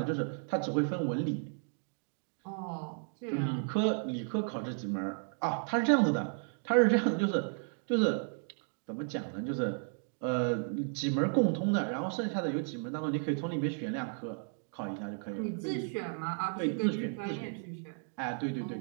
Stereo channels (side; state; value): left; silent; 55 dB below the other